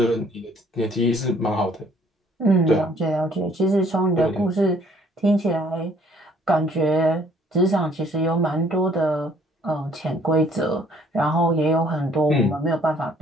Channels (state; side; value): normal; both; correlation 0.60